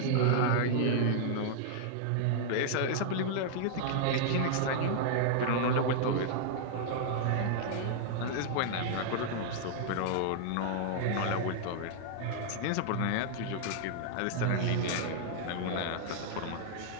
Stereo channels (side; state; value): both; different; correlation -0.01